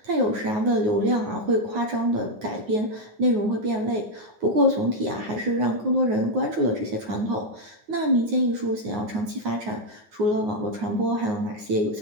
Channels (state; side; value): late; left; 9.5 ms